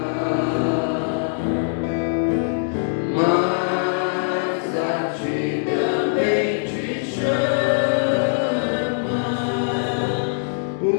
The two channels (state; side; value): silent; right; digital silence